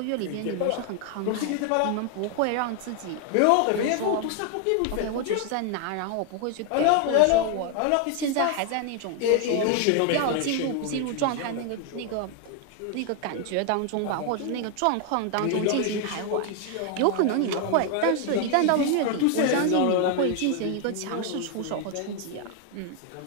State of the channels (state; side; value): different; both; correlation 0.00